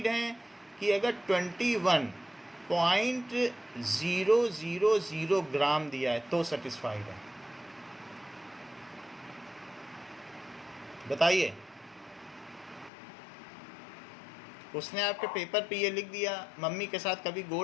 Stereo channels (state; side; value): drops out; right; at 12.9 s